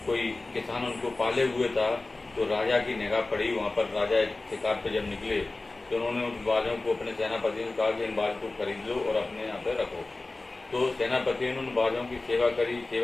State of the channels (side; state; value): right; quieter; 3.2 dB